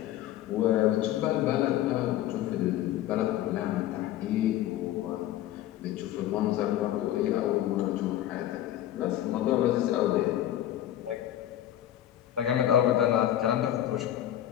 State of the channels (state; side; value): quieter; right; 12.6 dB